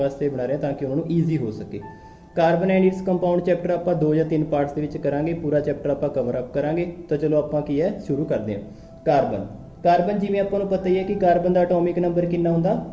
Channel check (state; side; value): identical; both; correlation 1.00